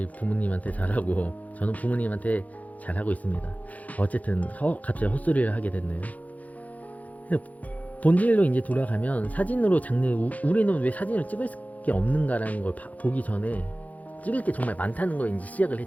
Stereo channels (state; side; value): late; right; 0.074 ms